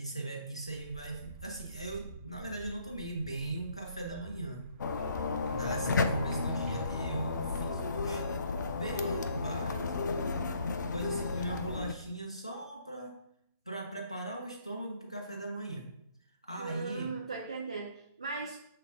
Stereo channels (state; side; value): inverted; both; correlation -0.65